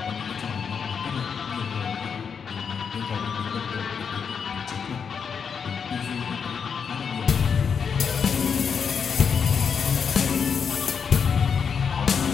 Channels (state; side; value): quieter; right; 6.5 dB